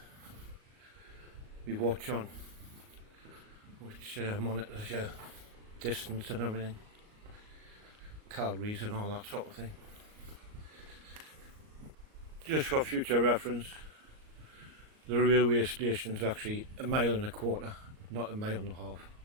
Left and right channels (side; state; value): left; late; 38 ms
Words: watch on, which monitors your distance and everything, calories and all that sort of thing. Just for future reference, the railway station's actually 1.25 miles, not 1.5 miles.